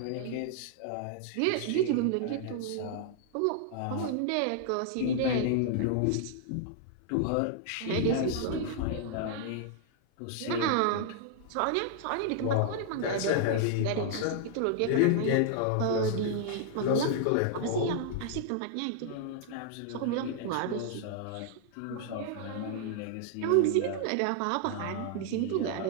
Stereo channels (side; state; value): both; different; correlation -0.01